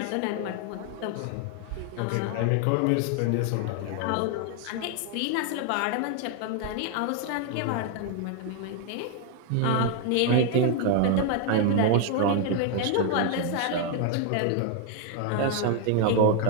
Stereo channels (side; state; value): both; different; correlation 0.00